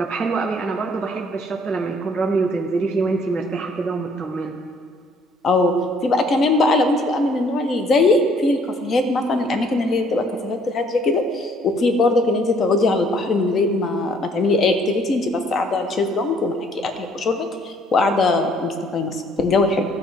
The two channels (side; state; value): both; normal; correlation 0.61